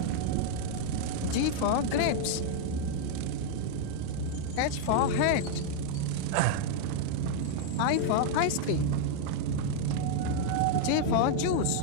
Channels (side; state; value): both; different; correlation -0.01